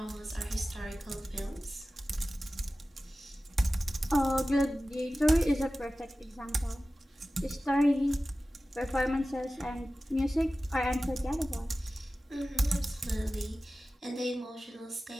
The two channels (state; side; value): normal; both; correlation 0.96